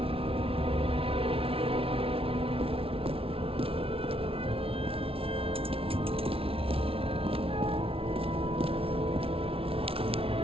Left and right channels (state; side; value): late; left; 0.26 ms